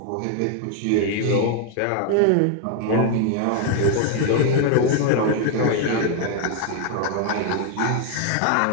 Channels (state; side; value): different; both; correlation 0.01